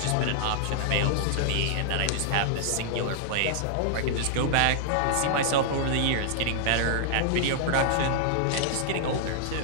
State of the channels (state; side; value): different; both; correlation -0.01